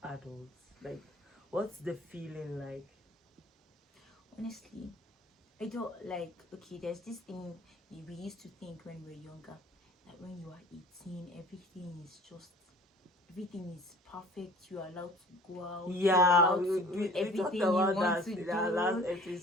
adult? Like, what's the feeling like? Honestly, I don't like. Okay, there's this thing we used to think when we were younger, that when you are 18, everything is perfect. You are allowed to go out. Yeah, you are allowed to do everything you want to do. Last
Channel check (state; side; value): normal; both; correlation 0.48